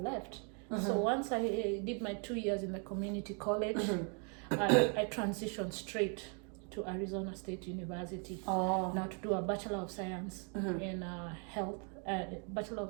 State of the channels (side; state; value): left; quieter; 38.8 dB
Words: So once I did my 2 years in the community college, I transitioned straight to Arizona State University now to do a Bachelor of Science in health, Bachelor